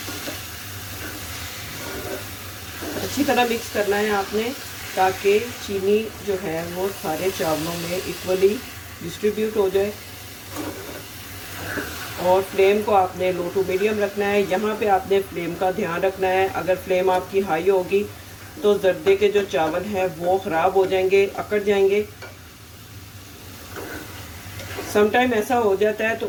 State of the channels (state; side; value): identical; both; correlation 1.00